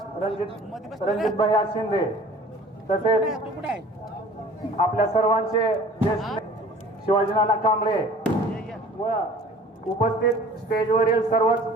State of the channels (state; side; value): normal; both; correlation 0.48